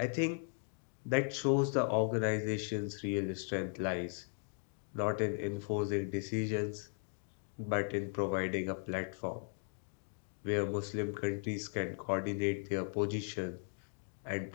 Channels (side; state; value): right; silent; 53 dB below the other